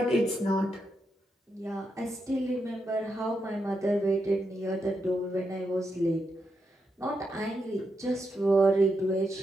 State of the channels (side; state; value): both; normal; correlation 0.83